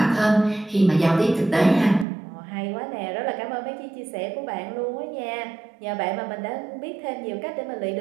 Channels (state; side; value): drops out; left; at 2.1 s